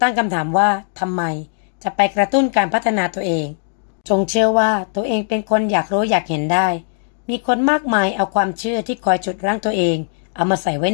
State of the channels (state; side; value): silent; right; digital silence